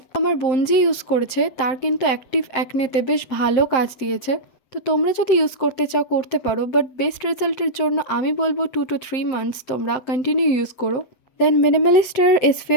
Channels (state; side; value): late; right; 7.7 ms